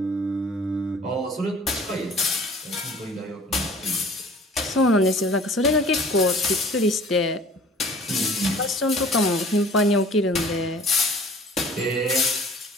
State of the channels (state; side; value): normal; both; correlation 0.48